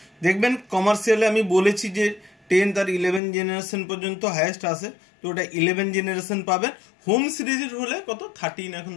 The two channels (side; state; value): right; drops out; at 3.2 s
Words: দেখবেন কমার্শিয়ালে আমি বলেছি যে 10 আর 11 জেনারেশন পর্যন্ত হাইয়েস্ট আসে, তো ওটা 11 জেনারেশন পাবেন। হোম সিরিজের হলে কত 13, এখন